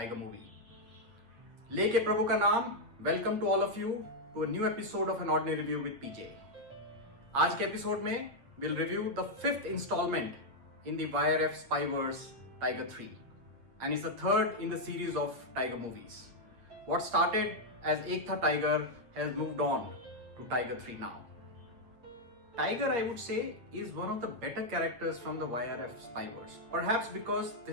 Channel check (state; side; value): late; left; 8.4 ms